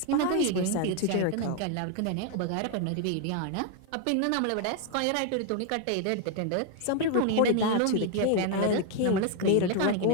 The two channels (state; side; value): different; both; correlation 0.00